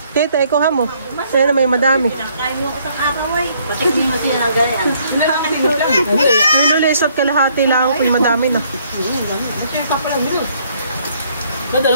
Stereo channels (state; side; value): inverted; both; correlation -0.66